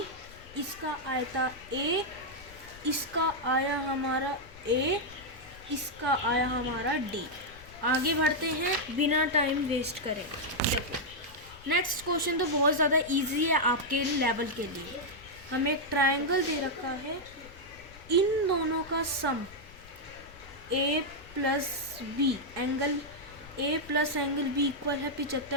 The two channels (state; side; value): noise; left; rumble, 20 dB below the sound